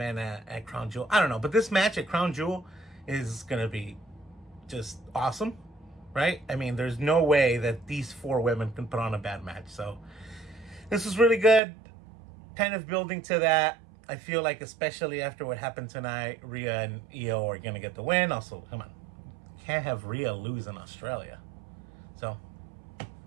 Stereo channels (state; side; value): drops out; left; at 11.6 s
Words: at Crown Jewel. I don't know, but this match at Crown Jewel is going to be just awesome, right? I mean, there's no way that these 4 women can put on a bad match. So this was really good. Kind of building to that. I feel like, especially after what happened tonight, Rhea and Io are going to get the win. Also, come on, can't have Rhea lose in Australia. So,